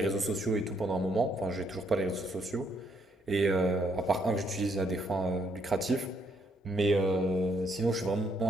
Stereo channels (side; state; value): both; normal; correlation 0.72